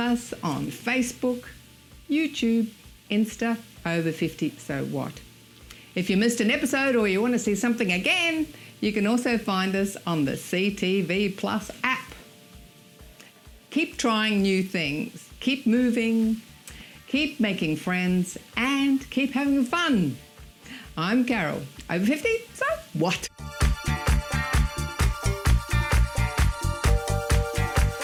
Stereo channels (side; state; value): both; identical; correlation 1.00